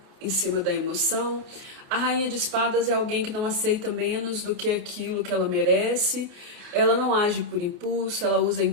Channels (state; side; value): late; left; 28 ms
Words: em cima da emoção. A Rainha de Espadas é alguém que não aceita menos do que aquilo que ela merece. Ela não age por impulso, ela usa